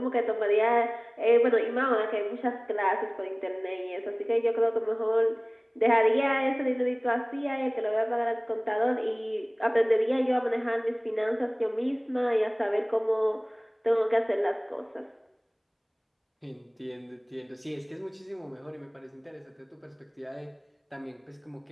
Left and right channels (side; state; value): both; identical; correlation 1.00